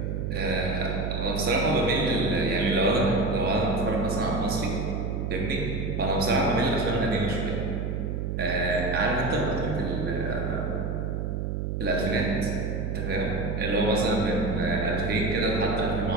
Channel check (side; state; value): right; noise; hum, 2 dB below the sound